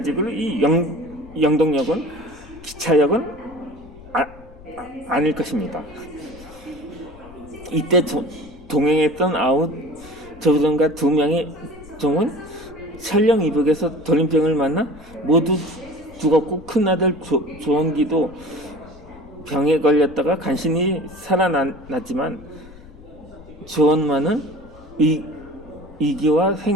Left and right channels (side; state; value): left; noise; rumble, 21 dB below the sound